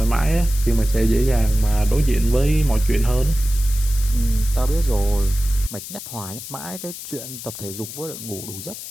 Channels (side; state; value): left; noise; hiss, 11 dB below the sound